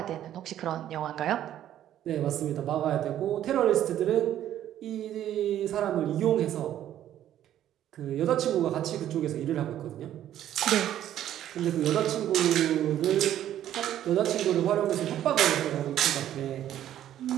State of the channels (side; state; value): left; quieter; 11.6 dB